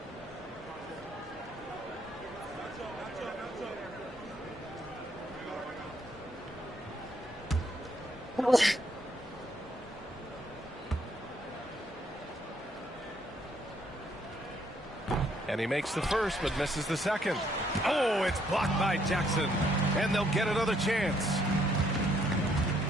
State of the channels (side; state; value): both; normal; correlation 0.70